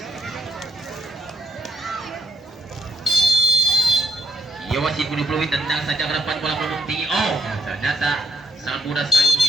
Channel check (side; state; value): both; normal; correlation 0.77